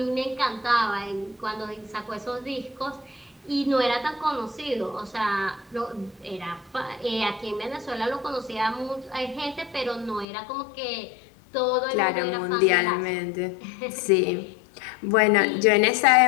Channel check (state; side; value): drops out; right; at 10.2 s